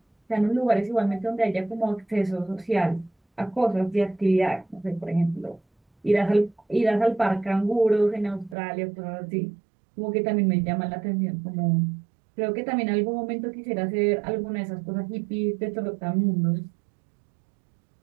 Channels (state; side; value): drops out; left; at 8.6 s